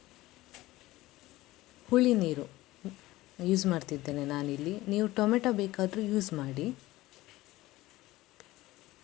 ಹುಳಿ ನೀರು ಯೂಸ್ ಮಾಡ್ತಿದ್ದೇನೆ ನಾನಿಲ್ಲಿ. ನೀವು ಟೊಮೆಟೊ ಬೇಕಾದರೂ ಯೂಸ್ ಮಾಡಿ.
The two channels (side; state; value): right; quieter; 17.8 dB